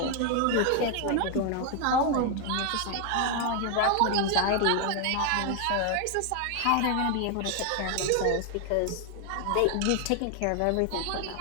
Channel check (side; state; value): both; different; correlation 0.00